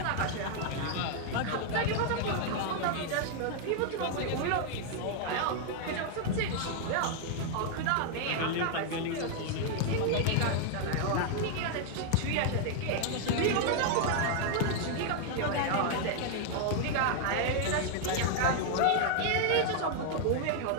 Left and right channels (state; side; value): different; both; correlation 0.00